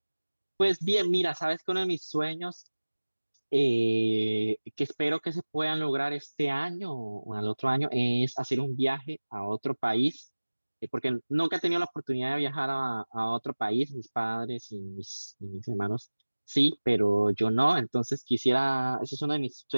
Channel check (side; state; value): both; inverted; correlation -1.00